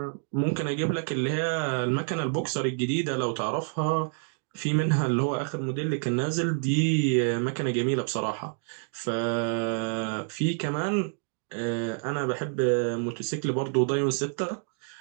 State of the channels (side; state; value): left; silent; 56 dB below the other